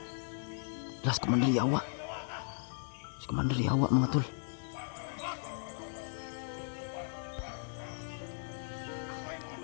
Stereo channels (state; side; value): silent; right; digital silence